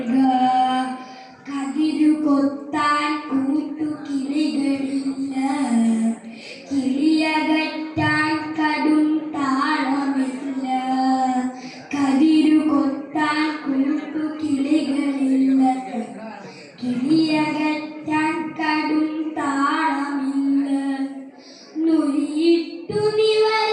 കതിരു കൊത്താൻ കൂട്ടുകിളികളില്ല, കിളിയകറ്റാൻ കടും താളമില്ല. കതിരു കൊത്താൻ കൂട്ടുകിളികളില്ല, കിളിയകറ്റാൻ കടും താളമില്ല. നുരിയിട്ടു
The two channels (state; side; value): identical; both; correlation 1.00